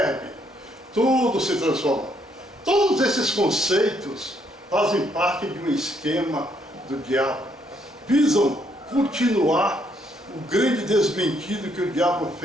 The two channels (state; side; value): normal; both; correlation 0.72